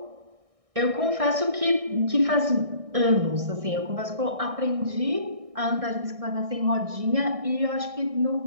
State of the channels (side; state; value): left; late; 1.6 ms